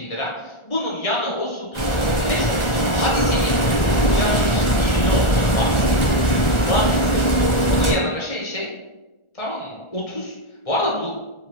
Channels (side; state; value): right; late; 1.4 ms